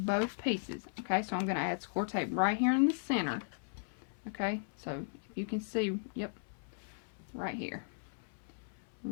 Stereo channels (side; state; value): right; silent; 53 dB below the other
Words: both pieces. Okay, so I'm going to add score tape right here in the center. Okay, so if you can see, yep, right here.